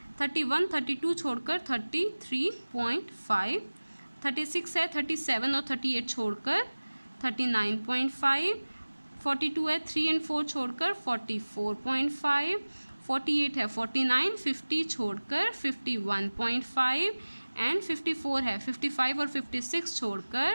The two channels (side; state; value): both; inverted; correlation -1.00